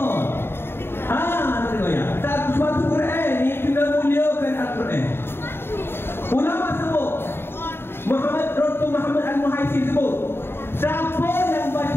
Tengok ya. Suatu Quran ni kena muliakan Al-Quran. Ulama sebut, Dr. Muhammad Al-Muhaisib sebut, siapa yang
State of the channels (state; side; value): late; right; 0.11 ms